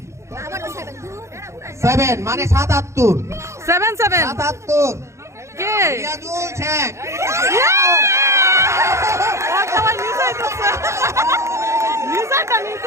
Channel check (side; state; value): left; late; 0.14 ms